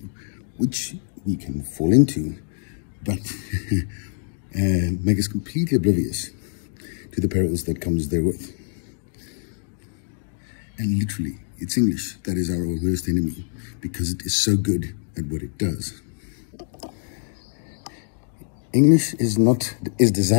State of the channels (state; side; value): silent; right; digital silence